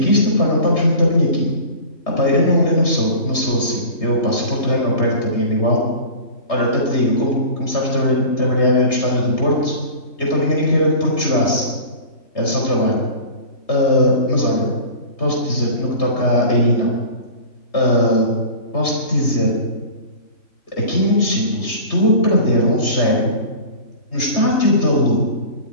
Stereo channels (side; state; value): right; late; 3.3 ms